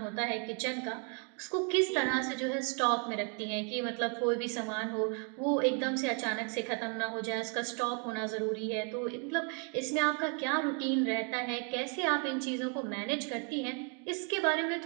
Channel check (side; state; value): left; quieter; 38.4 dB